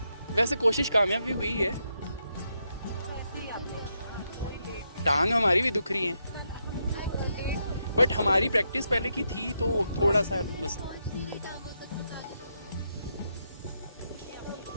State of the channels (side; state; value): both; inverted; correlation -0.81